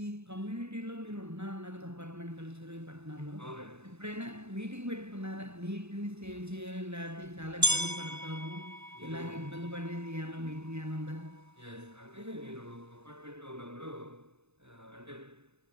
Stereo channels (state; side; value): late; left; 0.80 ms